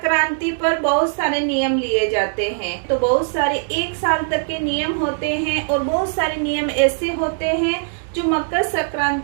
पर बहुत सारे नियम लिए जाते हैं। तो बहुत सारे 1 साल तक के नियम होते हैं और बहुत सारे नियम ऐसे होते हैं जो मकर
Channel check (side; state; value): left; silent; digital silence